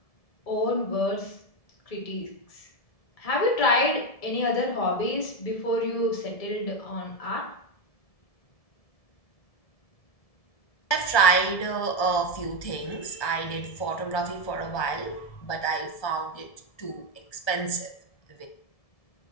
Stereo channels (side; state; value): right; late; 1.7 ms